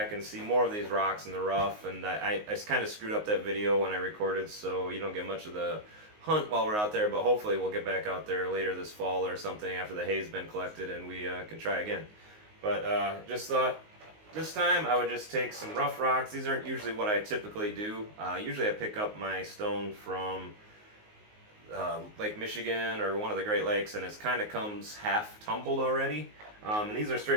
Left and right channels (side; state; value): left; late; 19 ms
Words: and see more of these rocks in the rough, and I kind of screwed up that video when I recorded, so you don't get much of the hunt while we're out there, but hopefully we'll get back out there later this fall or something after the hay's been collected and we can try again. But just thought this time I would just take some rough rocks. These aren't usually what I typically do. Usually I pick up my stone from Lake Michigan or one of the Great Lakes, and it kind of comes half tumbled already. And these are